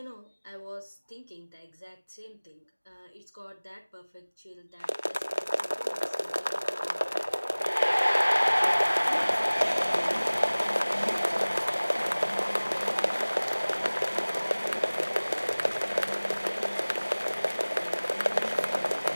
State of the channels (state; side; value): inverted; both; correlation -1.00